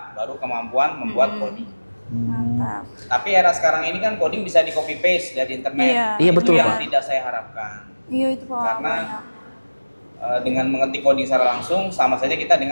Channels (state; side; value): inverted; both; correlation -1.00